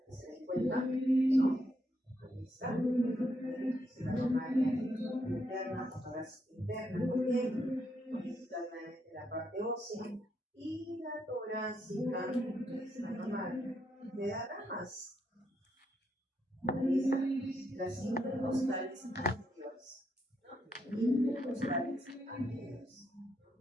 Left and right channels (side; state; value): both; normal; correlation 0.78